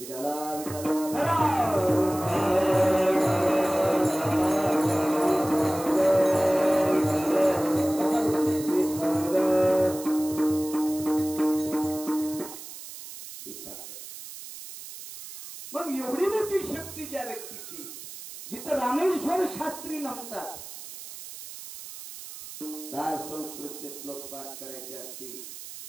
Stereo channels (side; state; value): right; noise; hiss, 13 dB below the sound